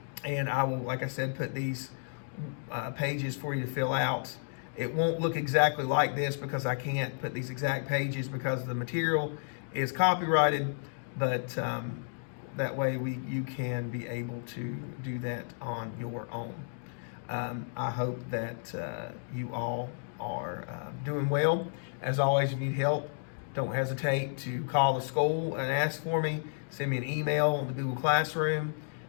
And I will, like I said, put these pages for you to fill out. It won't look exactly like this because I can't put these exact pages because the material is copyrighted, but that way you can be able to do that on your own. I hope that you all are doing well. As always, if you need help, don't hesitate to call the school and ask for me. Send me an email on the Google Classroom.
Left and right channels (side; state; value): right; silent; digital silence